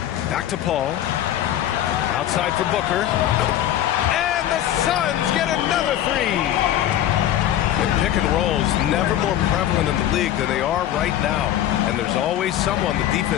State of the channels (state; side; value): quieter; right; 11.9 dB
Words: Back to Paul. Outside for Booker. And the Suns get another 3. Pick and rolls never more prevalent in the league than they are right now. And there's always someone the